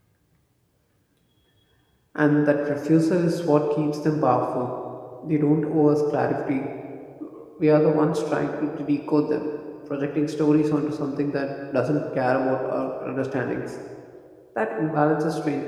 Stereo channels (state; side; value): identical; both; correlation 1.00